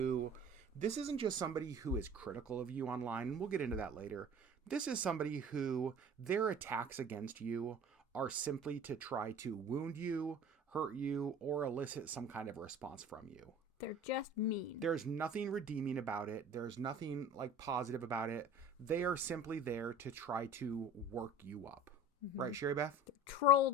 this isn't just somebody who is critical of you online, and we'll get into that later. This is somebody who their attacks against you are simply to try to wound you, hurt you, or elicit some kind of response from you. They're just mean. There's nothing redeeming about it. There's nothing like positive about it. They are simply there to try to work you up. Right, Sherry Beth? They're trolls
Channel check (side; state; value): both; normal; correlation 0.42